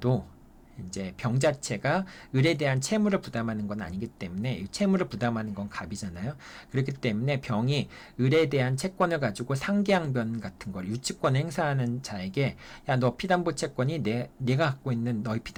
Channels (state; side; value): identical; both; correlation 1.00